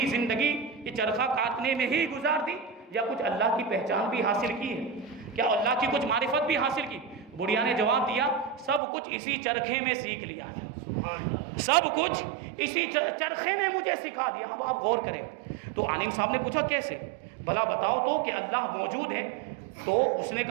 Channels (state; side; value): drops out; left; at 8.8 s